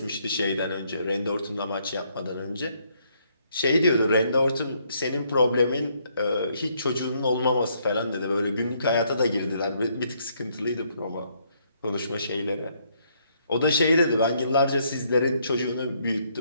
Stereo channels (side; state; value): both; inverted; correlation -0.71